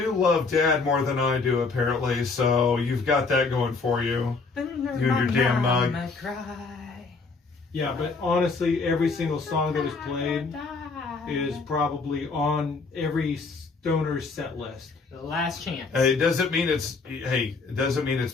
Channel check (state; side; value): quieter; right; 4.3 dB